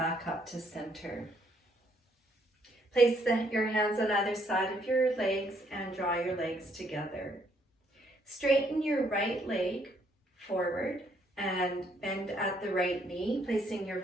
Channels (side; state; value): both; normal; correlation 0.69